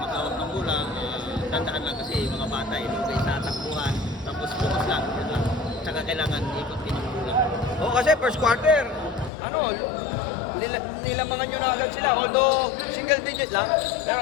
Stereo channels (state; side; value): drops out; right; at 9.3 s